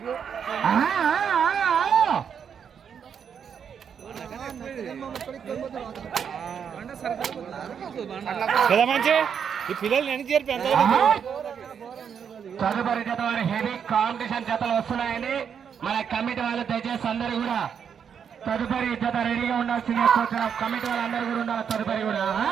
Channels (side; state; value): left; quieter; 7.5 dB